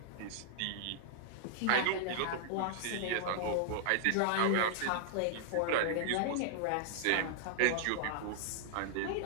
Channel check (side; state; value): both; different; correlation -0.01